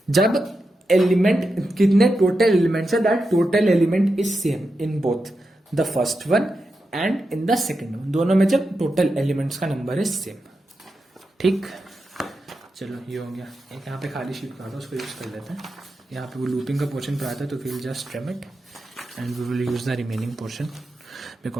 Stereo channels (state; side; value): normal; both; correlation 0.88